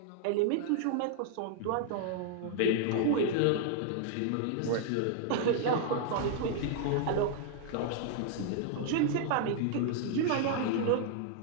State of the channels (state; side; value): different; both; correlation -0.01